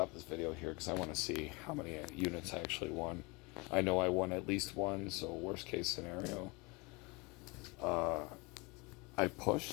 this video here because I want to see how many units I actually won. I know I won at least 1, so worst case scenario. I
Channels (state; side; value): quieter; right; 27.0 dB